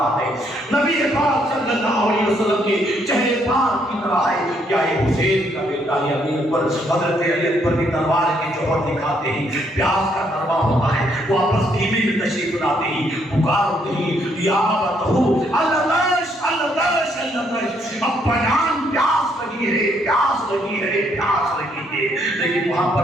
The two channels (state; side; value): normal; both; correlation 0.71